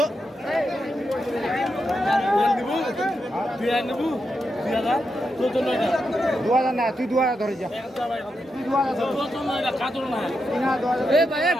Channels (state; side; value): normal; both; correlation 0.86